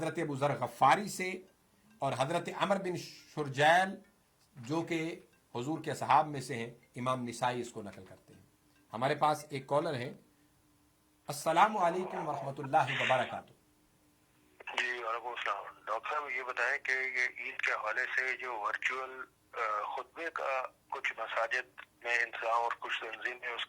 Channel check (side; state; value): both; identical; correlation 1.00